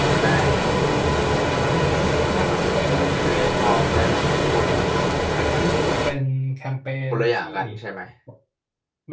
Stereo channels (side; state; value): both; identical; correlation 1.00